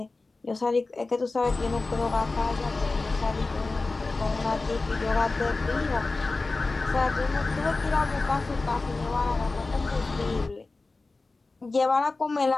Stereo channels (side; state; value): right; quieter; 3.5 dB